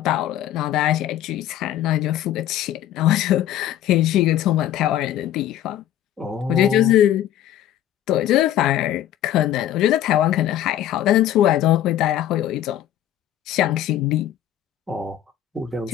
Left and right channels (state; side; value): quieter; right; 11.8 dB